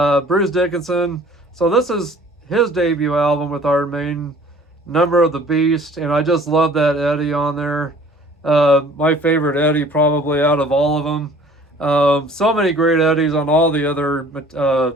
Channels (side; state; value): both; normal; correlation 0.51